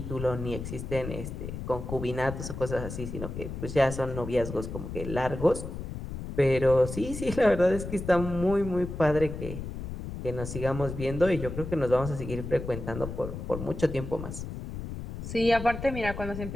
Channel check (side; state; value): left; noise; rumble, 7 dB below the sound